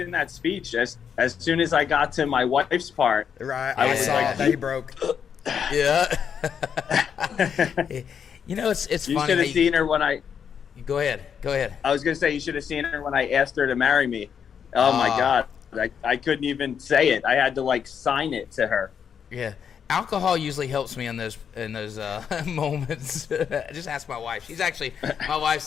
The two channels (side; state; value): right; quieter; 7.5 dB